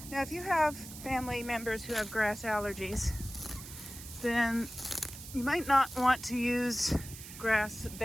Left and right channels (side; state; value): right; noise; hiss, 13 dB below the sound